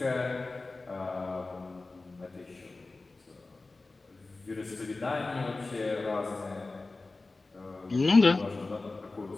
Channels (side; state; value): right; quieter; 3.4 dB